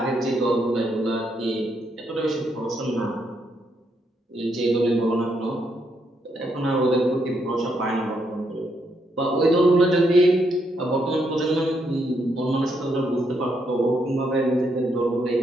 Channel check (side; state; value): both; normal; correlation 0.77